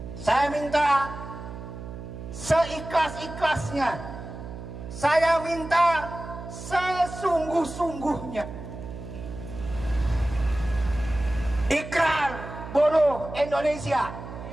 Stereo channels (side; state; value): right; noise; hum, 11 dB below the sound